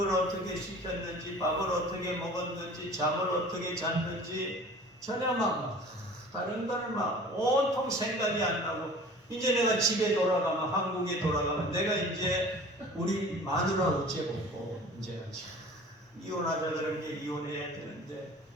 어떻게 시켰는지, 밥을 어떻게 먹었는지, 잠을 어떻게 잤는지 전혀 막 다른 거는 막 온통 생각이 안 나고, 이제 내가 집에 돌아가면, 한국에 돌아가면 내가 이제 우리 마누라 어째 보고 이제 이혼하자 그런 게 이혼해야 되는데,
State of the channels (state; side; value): normal; both; correlation 0.44